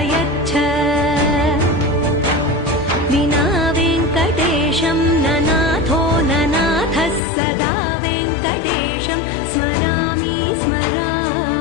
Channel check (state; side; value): drops out; right; at 7.2 s